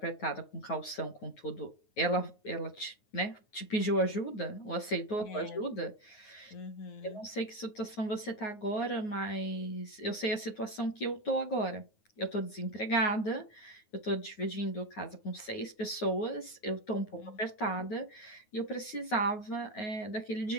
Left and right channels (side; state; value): right; late; 9.5 ms